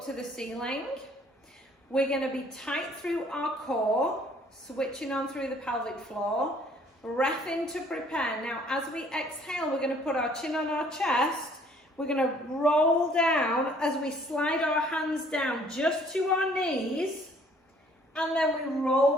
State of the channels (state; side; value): normal; both; correlation 0.59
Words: to the ceiling. We're going to be tight through our core, switching on through the pelvic floor. Breath in to prepare. Now, as we exhale, we're going to put our chin on our chest. We're going to roll down as we slide our hands down just to our knees. And then we